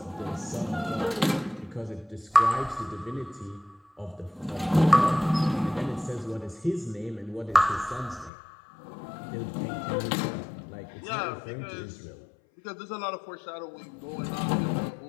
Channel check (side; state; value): right; drops out; at 8.3 s